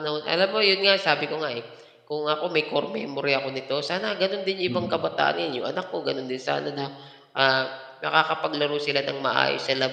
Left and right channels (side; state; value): both; identical; correlation 1.00